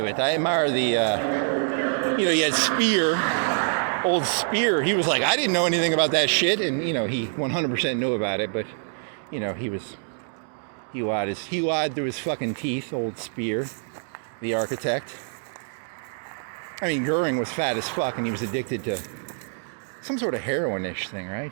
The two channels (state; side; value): silent; left; digital silence